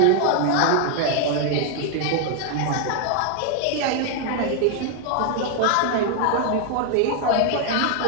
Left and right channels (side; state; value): both; different; correlation 0.00